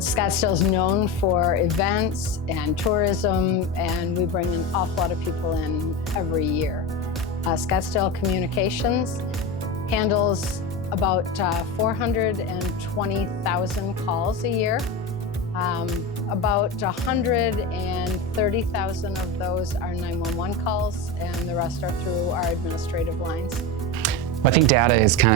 is known for events and tourism, and we bring an awful lot of people in every year. Scottsdale Communications handles about 420,000 calls a year. About 130,000 of those are 911 calls, and the rest are through our administrative lines. I think data is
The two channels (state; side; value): normal; both; correlation 0.21